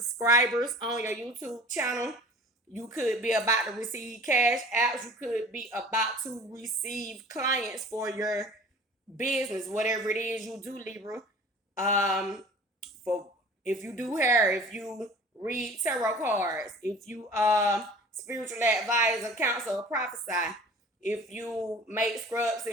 on your YouTube channel. You could be about to receive cash apps. You could be about to receive clients for your business, whatever it is you do, Libra. For if you do hair, if you read tarot cards, if you spiritual advisor, counsel, or prophesy, if you make scrubs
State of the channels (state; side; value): normal; both; correlation 0.45